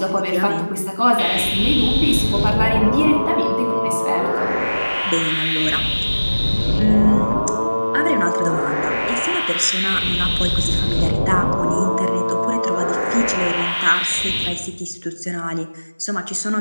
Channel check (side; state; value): both; inverted; correlation -1.00